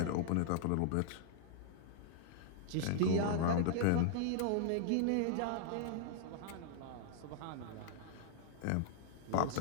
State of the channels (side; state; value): both; different; correlation -0.01